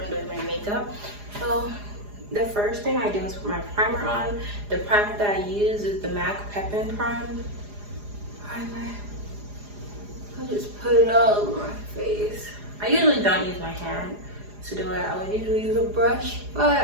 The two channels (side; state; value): left; late; 4.9 ms